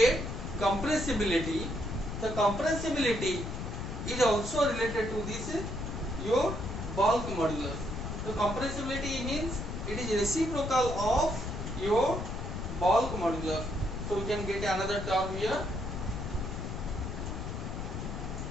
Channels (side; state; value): left; noise; rumble, 5 dB below the sound